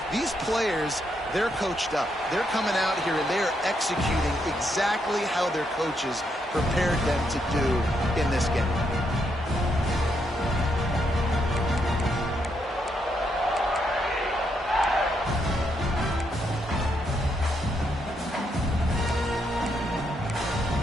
These players, they're coached up. They're coming out here, and they are executing exactly how their coaches prepared them to do in this game.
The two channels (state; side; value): normal; both; correlation 0.78